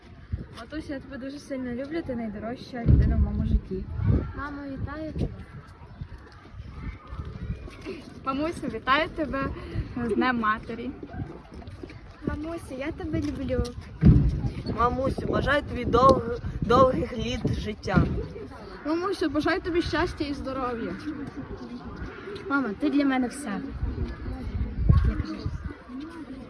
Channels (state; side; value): identical; both; correlation 1.00